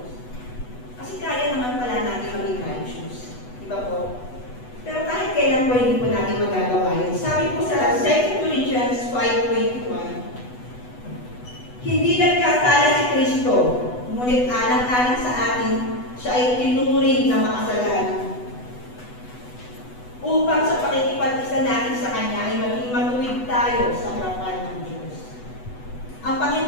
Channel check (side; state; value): right; late; 8.1 ms